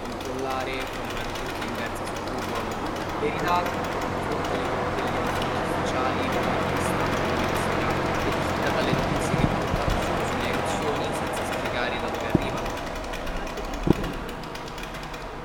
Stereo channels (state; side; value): identical; both; correlation 1.00